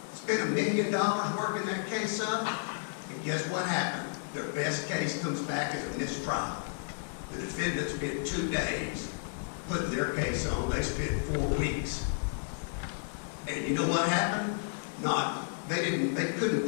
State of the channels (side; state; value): right; silent; digital silence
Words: spent $1 million working that case up, and guess what happened? Their best case comes back as a mistrial. The defendant spent 2 days putting their case on. They spent 4 weeks. And you know what happened? They couldn't